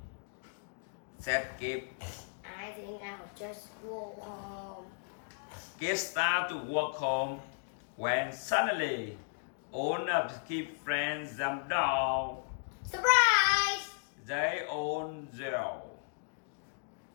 Said Kip. I think I'll just go home. Kip started to walk home when suddenly all of Kip's friends jumped down. Surprise! They all yelled.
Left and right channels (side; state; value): right; silent; digital silence